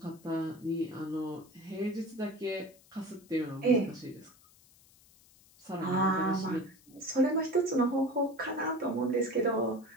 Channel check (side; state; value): left; noise; hiss, 27 dB below the sound